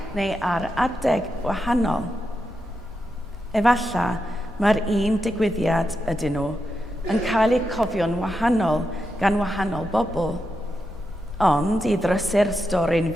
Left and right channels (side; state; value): both; normal; correlation 0.86